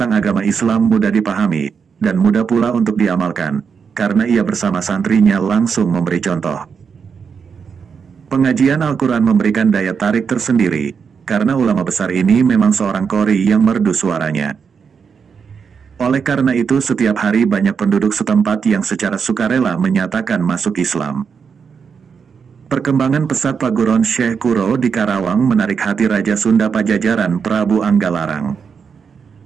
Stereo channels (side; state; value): left; quieter; 6.2 dB